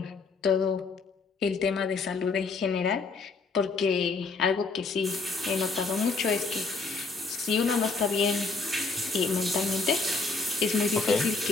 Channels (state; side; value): quieter; right; 4.2 dB